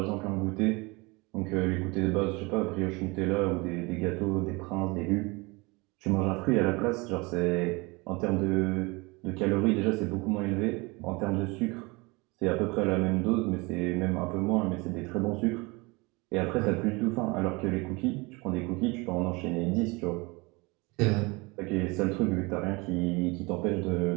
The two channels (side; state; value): left; quieter; 25.8 dB